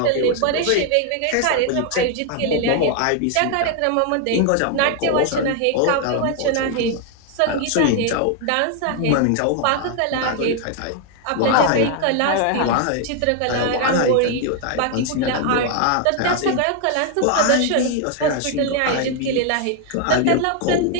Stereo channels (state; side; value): different; both; correlation 0.00